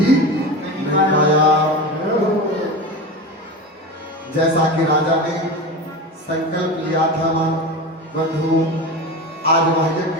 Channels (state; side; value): normal; both; correlation 0.26